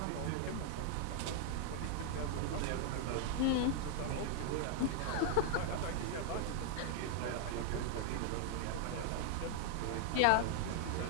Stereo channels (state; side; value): different; both; correlation 0.00